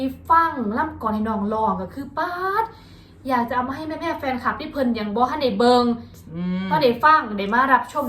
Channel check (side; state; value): both; identical; correlation 1.00